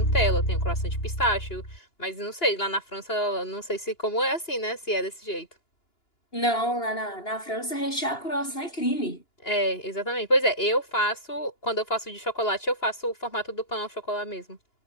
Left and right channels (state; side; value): late; right; 2.9 ms